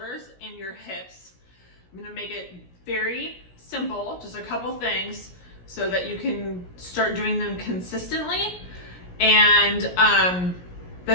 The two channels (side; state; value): right; late; 17 ms